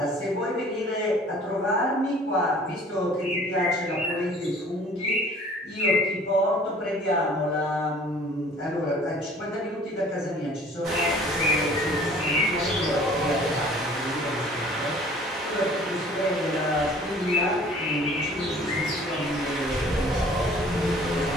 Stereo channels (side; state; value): both; normal; correlation 0.51